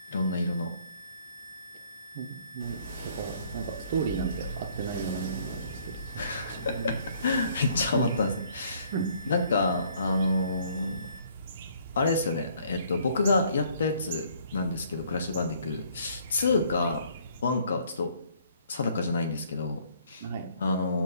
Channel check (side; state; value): both; inverted; correlation -0.62